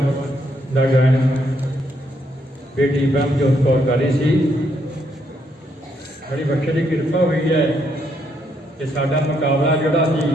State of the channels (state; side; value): normal; both; correlation 0.75